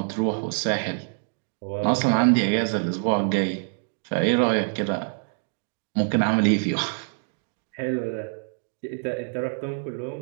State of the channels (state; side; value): silent; left; 61 dB below the other